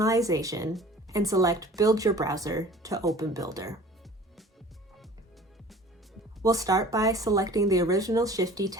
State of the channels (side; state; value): both; normal; correlation 0.46